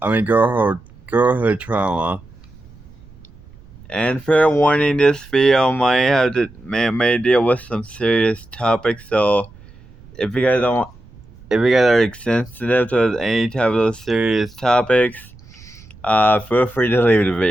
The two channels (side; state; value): right; noise; rumble, 23 dB below the sound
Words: Trauma." And fair warning, this video may deal with some serious topics. So if you guys are sensitive to any type of those serious topics, feel free to leave the